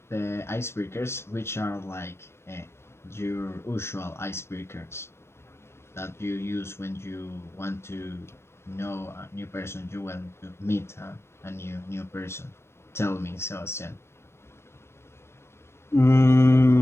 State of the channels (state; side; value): late; right; 0.12 ms